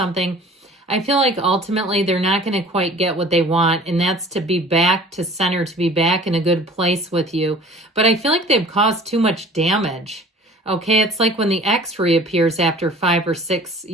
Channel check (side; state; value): both; normal; correlation 0.46